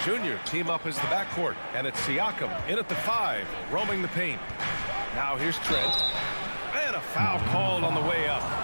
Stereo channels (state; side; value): inverted; both; correlation -1.00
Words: Jr. team up as the backcourt. And it's Siakam in at the 5, roaming the paint. Now here's Trent. And a foul called on the way up.